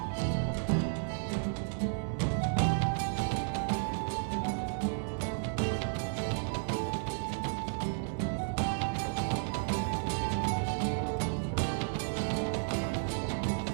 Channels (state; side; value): silent; left; 56 dB below the other